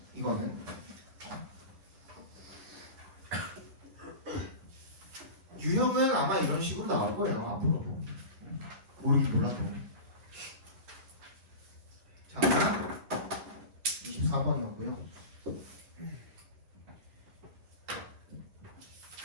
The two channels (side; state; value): left; late; 11 ms